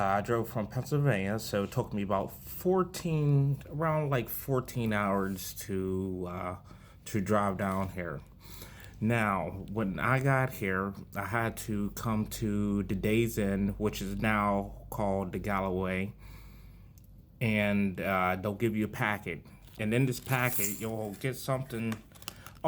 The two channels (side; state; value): both; identical; correlation 1.00